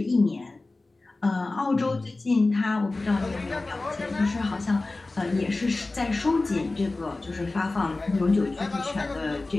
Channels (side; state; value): right; quieter; 3.2 dB